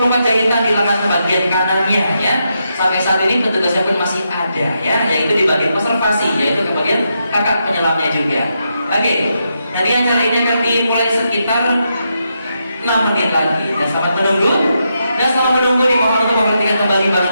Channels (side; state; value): both; inverted; correlation -0.83